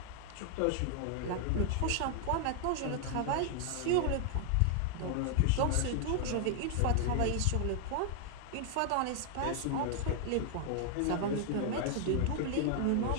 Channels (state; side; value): different; both; correlation 0.00